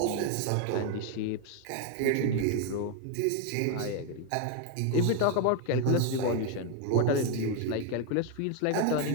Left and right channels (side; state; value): both; different; correlation 0.01